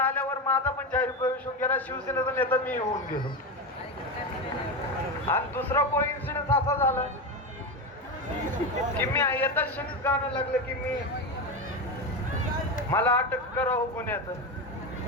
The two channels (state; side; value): normal; both; correlation 0.17